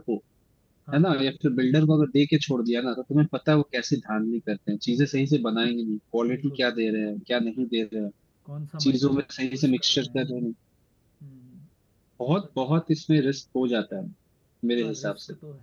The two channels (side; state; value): both; identical; correlation 1.00